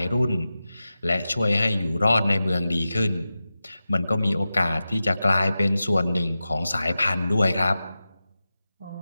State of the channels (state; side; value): inverted; both; correlation -0.93